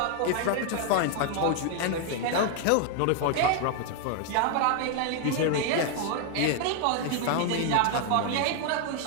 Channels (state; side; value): different; both; correlation 0.00